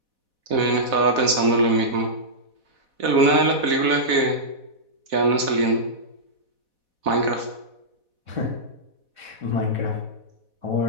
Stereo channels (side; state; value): left; late; 4.1 ms